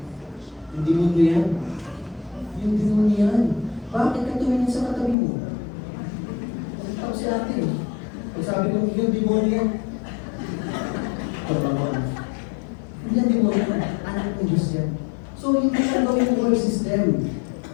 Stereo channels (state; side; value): drops out; right; at 5.2 s